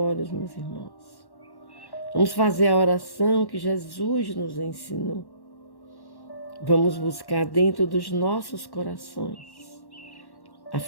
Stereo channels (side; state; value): right; late; 1.1 ms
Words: meus irmãos. Vamos fazer a oração que Jesus nos ensinou. Vamos buscar dentro dos nossos corações a